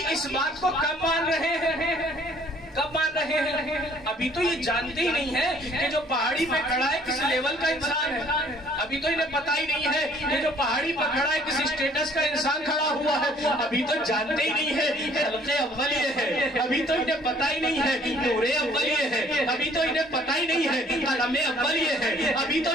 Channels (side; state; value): both; normal; correlation 0.58